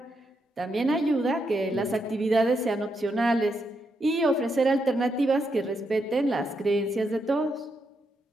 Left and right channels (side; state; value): both; normal; correlation 0.81